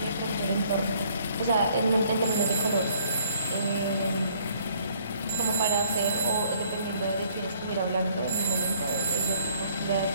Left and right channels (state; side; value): inverted; both; correlation -0.62